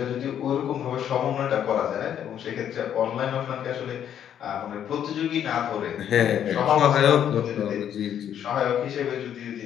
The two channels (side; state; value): right; quieter; 9.6 dB